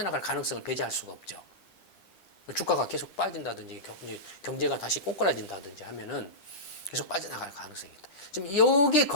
가능성을 배제할 수가 없죠. 주가가 계속 빠진다든지 경제가 다시 꼬꾸라진다든지 하면은 계속 빠져나갈 가능성이 있다. 지금 여기에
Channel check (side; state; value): right; late; 10 ms